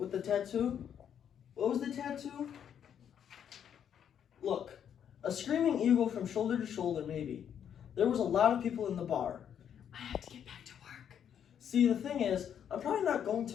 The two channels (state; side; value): quieter; right; 8.8 dB